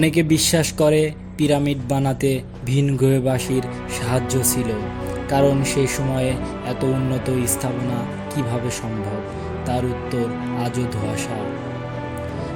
বিশ্বাস করে পিরামিড বানাতে ভিনগ্রহবাসীর সাহায্য ছিল, কারণ সেই সময়ে এত উন্নত স্থাপনা কিভাবে সম্ভব, তার উত্তর আজও ধোঁয়াশা।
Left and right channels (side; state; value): both; identical; correlation 1.00